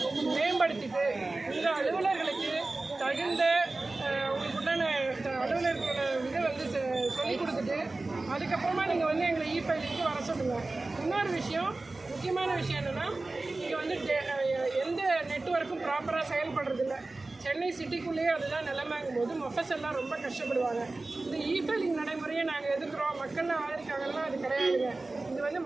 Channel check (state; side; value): quieter; left; 3.2 dB